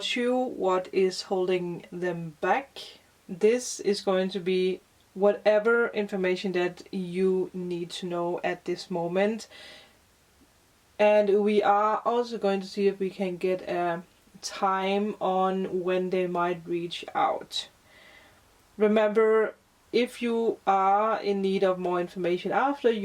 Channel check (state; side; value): identical; both; correlation 1.00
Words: you, what is holding them back. This is going to be whatever information that you need to know at this moment. And we are also going to see if we can get a time on when they might reach out. Remember, if you are in need of more information after,